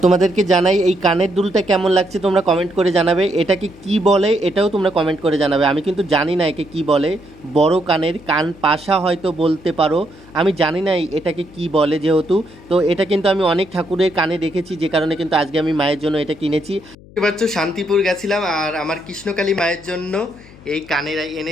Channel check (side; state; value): left; noise; hum, 22 dB below the sound